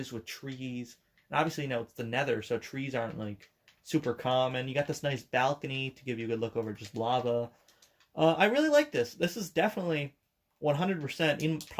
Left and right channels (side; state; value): both; identical; correlation 1.00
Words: with trees. And obviously, it's the Nether, so trees aren't like super common. You got this nice balcony to give you a good look over just lava. I really like this. This is definitely 100% in